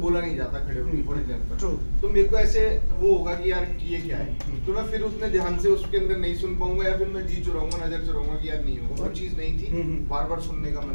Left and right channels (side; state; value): both; inverted; correlation -1.00